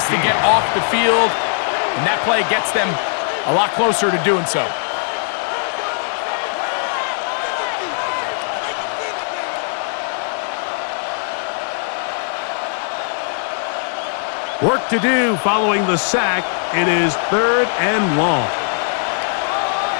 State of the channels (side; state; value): right; silent; digital silence